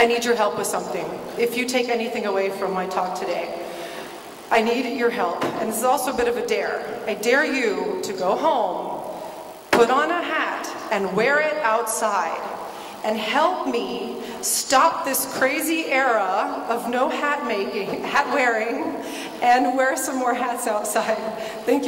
need your help with something. If you take anything away from my talk today, I need your help. And this is also a bit of a dare. I dare you to go home, put on a hat, and wear it outside. And help me stop this crazy era of no hat making, hat wearing, and wear some more hats outside. Thank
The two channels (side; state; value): both; identical; correlation 1.00